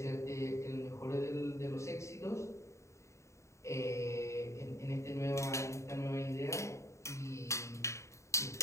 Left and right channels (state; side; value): late; right; 0.14 ms